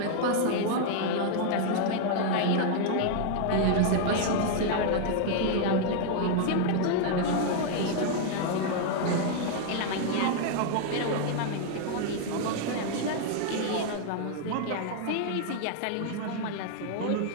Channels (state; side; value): different; both; correlation 0.00